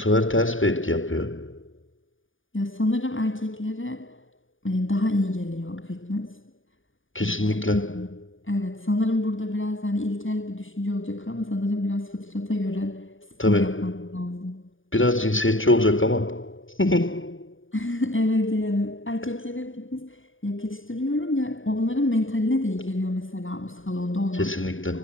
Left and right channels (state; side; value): late; right; 0.58 ms